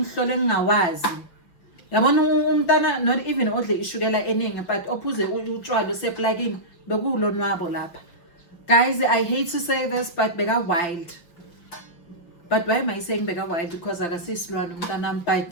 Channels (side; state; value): right; late; 5.8 ms